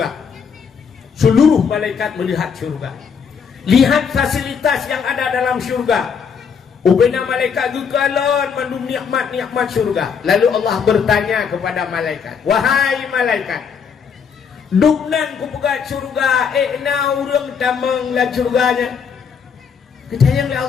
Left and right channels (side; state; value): right; quieter; 6.5 dB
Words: Seluruh malaikat melihat surga. Lihat fasilitas yang ada dalam surga. Ubena malaikat gugalon mandum nikmat-nikmat surga. Lalu Allah bertanya kepada malaikat, wahai malaikat, duknan ku pegat surga, na urang tamang la surganya. Kecayang